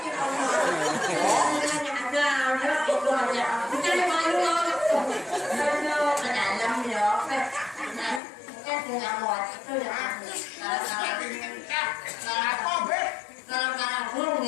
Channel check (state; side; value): drops out; right; at 8.2 s